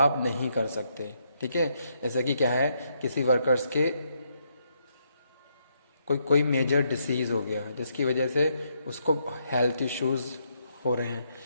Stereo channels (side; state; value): both; inverted; correlation -0.76